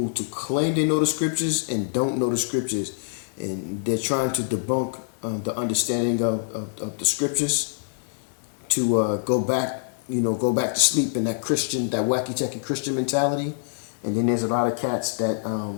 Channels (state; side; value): silent; right; digital silence